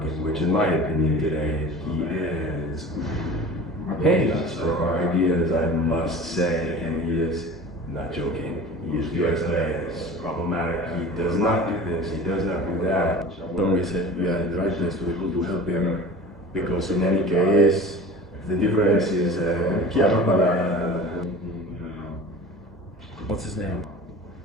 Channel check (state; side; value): normal; both; correlation 0.38